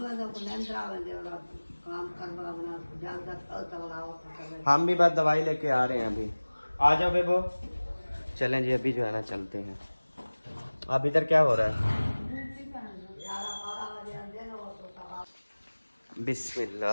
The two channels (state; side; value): inverted; both; correlation -1.00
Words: को निंद्रा बंदे वाला काम करवा बना जल्द तक हम भी बस दवाई लेके आ रहे हैं अभी। आ जाओ बेबो। चलें जी, अभी जो है ना चलते हैं। अब इधर क्या हो रहा है?